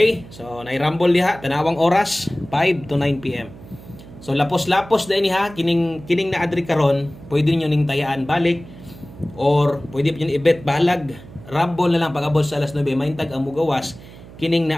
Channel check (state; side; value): noise; right; hum, 18 dB below the sound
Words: so nay-rumble diha tanawang oras 5 to 9 PM. So lapos-lapos dai ni ha kining na adri karon, pwede niyo ning tayaan balik or pwede niyo i-bet balag rumble na lang pag-abot sa alas 9 maintag ang mugawas kining